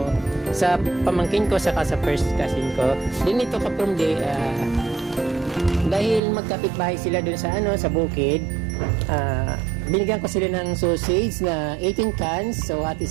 sa pamangkin ko saka sa first cousin ko. Din ito kaprom dahil magkapit-bahay sila dun sa sa bukid. Binigyan ko sila ng sausage na 18 cans. So, hati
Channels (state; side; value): drops out; left; at 6.2 s